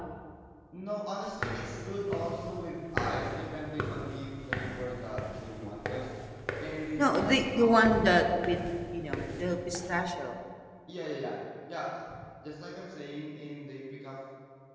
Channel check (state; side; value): identical; both; correlation 1.00